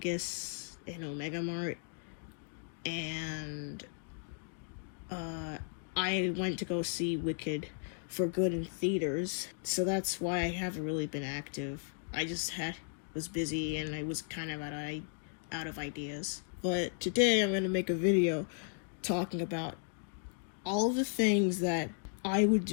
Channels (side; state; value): right; silent; digital silence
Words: and Omega Mart, and I went to go see Wicked for Good in theaters, so that's why I haven't really been active. I just was busy and I was kind of out of ideas. But today I'm going to make a video talking about all the things that I would